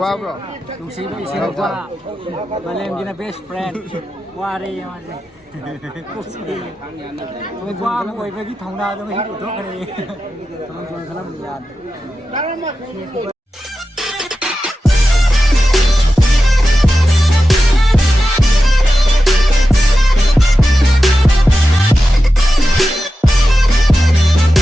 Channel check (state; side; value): normal; both; correlation 0.92